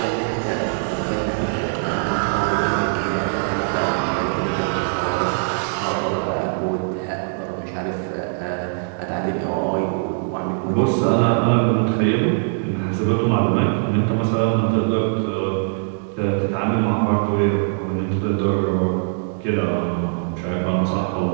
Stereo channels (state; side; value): silent; left; digital silence